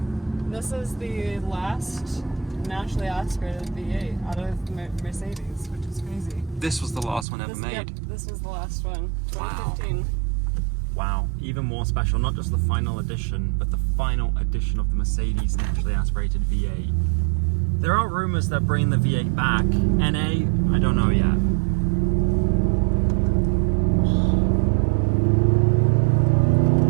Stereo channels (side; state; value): left; drops out; at 7.2 s